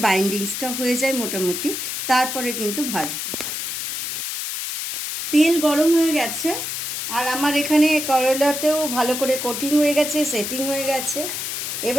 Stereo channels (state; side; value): noise; left; hiss, 4 dB below the sound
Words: বাইন্ডিংসটা হয়ে যায় মোটামুটি, তারপরে কিন্তু ভাজবো। তেল গরম হয়ে গেছে আর আমার এখানে করলাতেও ভালো করে কোটিং হয়ে গেছে, সেটিং হয়ে গেছে।